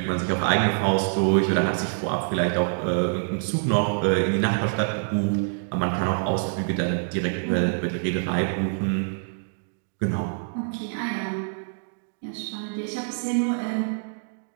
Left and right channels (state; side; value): silent; left; digital silence